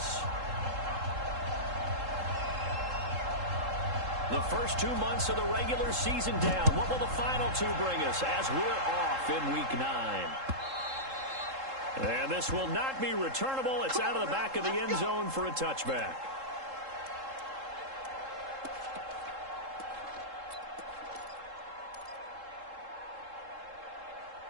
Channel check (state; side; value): late; left; 3.7 ms